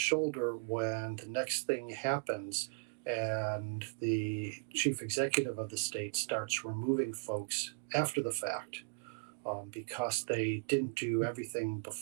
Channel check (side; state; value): left; silent; digital silence